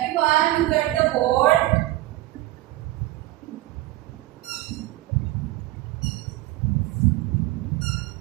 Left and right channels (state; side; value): quieter; left; 17.4 dB